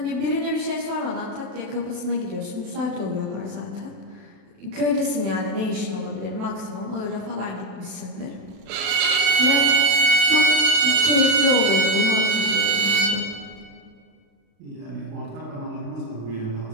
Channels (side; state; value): left; late; 36 ms